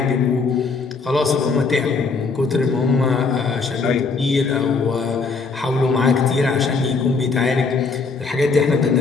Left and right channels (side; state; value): right; quieter; 4.5 dB